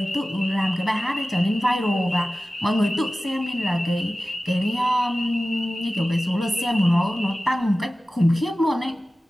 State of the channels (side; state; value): both; normal; correlation 0.95